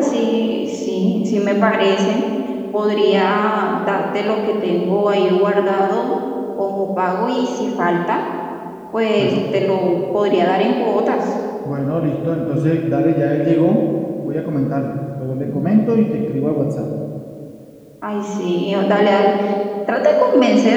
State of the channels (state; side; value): identical; both; correlation 1.00